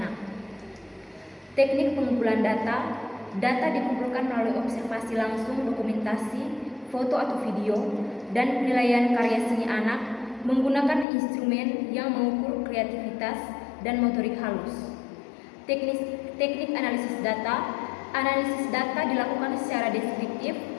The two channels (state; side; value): drops out; right; at 11.1 s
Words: Teknik pengumpulan data. Data dikumpulkan melalui observasi langsung, dokumentasi, foto atau video, dan penilaian karya seni anak menggunakan instrumen yang mengukur kreativitas dan motorik halus. Teknik analisis data. Analisis data dilakukan secara deskriptif